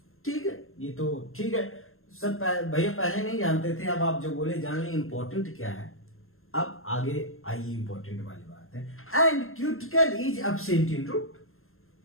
ठीक है, ये तो ठीक है, सब भैया पहले नहीं जानते थे, अब आप जो बोले जान लें इंपॉर्टेंट क्या है। अब आगे आइए इंपॉर्टेंट वाली बात है, and cuticle is absent in root.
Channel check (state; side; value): late; right; 0.61 ms